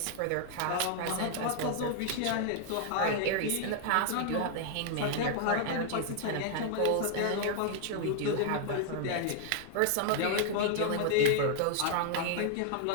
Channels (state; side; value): different; both; correlation 0.00